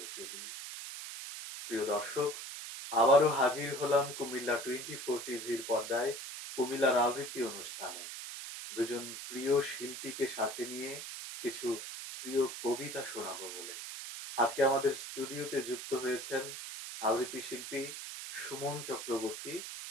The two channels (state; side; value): noise; right; hiss, 8 dB below the sound